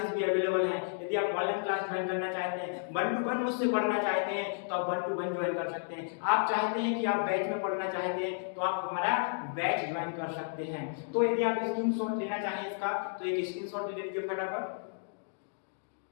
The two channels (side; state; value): right; silent; digital silence